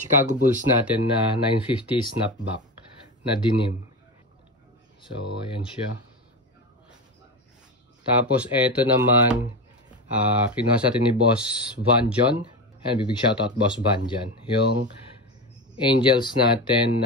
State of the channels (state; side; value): normal; both; correlation 0.21